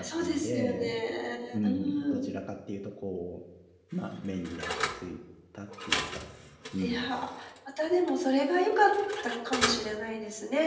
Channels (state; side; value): identical; both; correlation 1.00